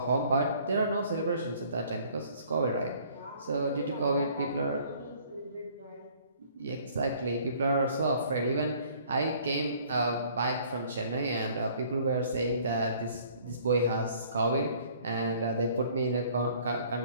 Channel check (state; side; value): inverted; both; correlation -0.57